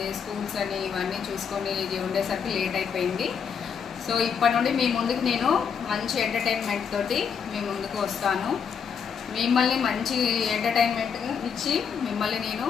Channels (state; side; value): quieter; right; 6.9 dB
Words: స్కూల్స్ అని ఇవన్నీ చూసుకొని ఉండేసరికి లేట్ అయిపోయింది. సో ఇప్పటి నుండి మీ ముందుకు నేను మంచి ఎంటర్టైన్మెంట్ తోటి మీ ముందుకు వస్తాను. మిమ్మల్ని మంచి ఎంటర్టైన్మెంట్ ఇచ్చి మిమ్మల్ని నేను